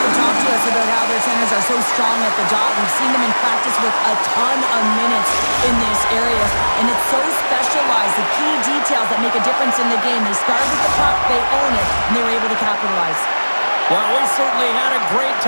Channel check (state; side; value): inverted; both; correlation -1.00